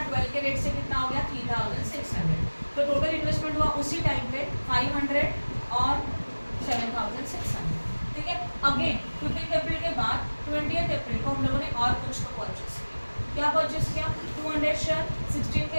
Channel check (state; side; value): inverted; both; correlation -1.00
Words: 12 के रेट से कितना हो गया 3600। तो टोटल इन्वेस्टमेंट हुआ उसी टाइम पे 500 और 7600, ठीक है। अगेन 15 अप्रैल के बाद 20 अप्रैल को हम लोगों ने और कुछ तो परचेज किया। क्या परचेज किया, 200 शेयर 16 के